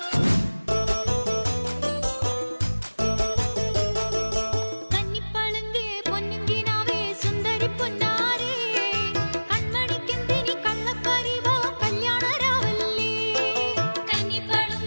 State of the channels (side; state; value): both; inverted; correlation -1.00